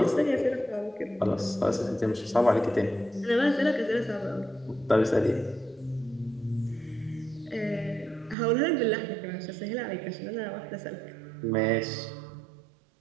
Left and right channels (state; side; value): drops out; left; at 8.3 s